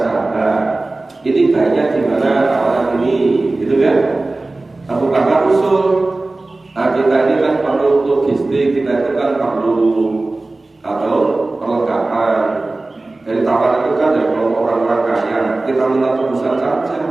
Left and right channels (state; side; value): quieter; left; 3.1 dB